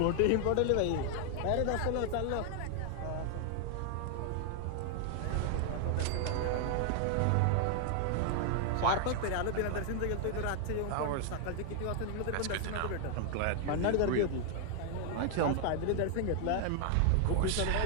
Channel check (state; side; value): different; both; correlation 0.00